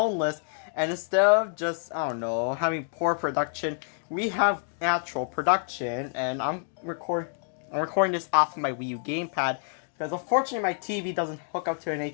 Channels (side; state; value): right; silent; 57 dB below the other